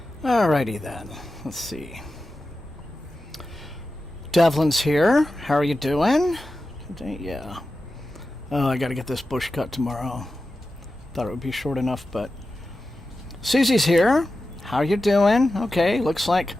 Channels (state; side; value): normal; both; correlation 0.93